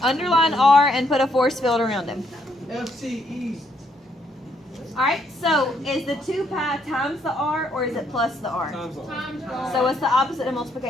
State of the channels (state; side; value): normal; both; correlation 0.72